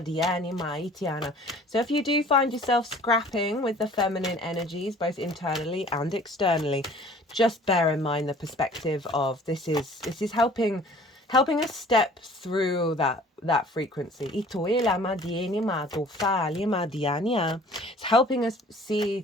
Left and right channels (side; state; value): both; normal; correlation 0.50